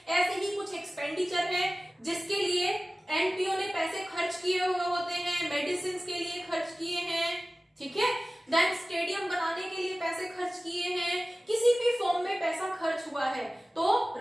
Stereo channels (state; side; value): normal; both; correlation 0.97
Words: ऐसे ही कुछ एक्सपेंडिचर है जिसके लिए एनपीओ ने पैसे खर्च किए हुए होते हैं, मेडिसिन के लिए खर्च किए हैं। ठीक है, देन स्टेडियम बनाने के लिए पैसे खर्च किए हैं, किसी भी फॉर्म में पैसा खर्च हुआ है। तो